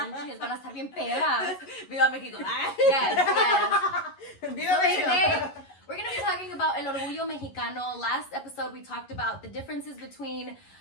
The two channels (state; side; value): late; right; 11 ms